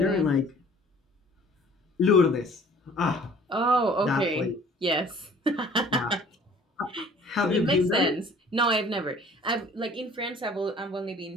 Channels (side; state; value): both; normal; correlation 0.51